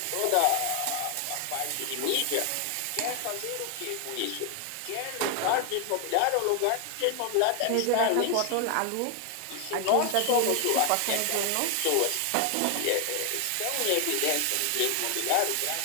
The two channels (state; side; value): different; both; correlation 0.01